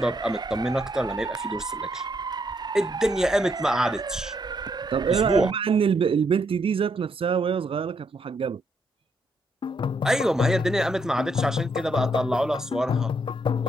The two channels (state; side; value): normal; both; correlation 0.75